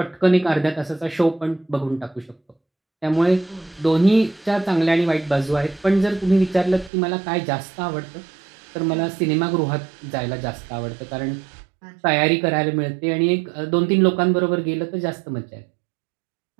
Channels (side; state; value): left; drops out; at 6.9 s